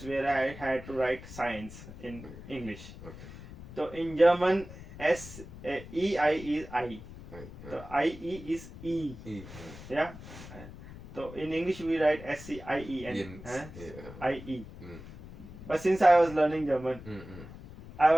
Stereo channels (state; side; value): noise; left; rumble, 15 dB below the sound